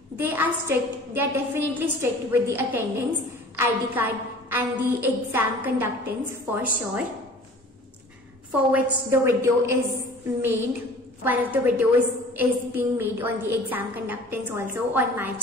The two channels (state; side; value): normal; both; correlation 0.46